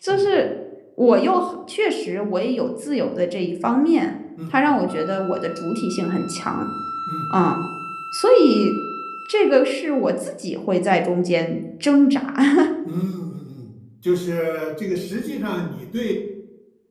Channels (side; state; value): both; identical; correlation 1.00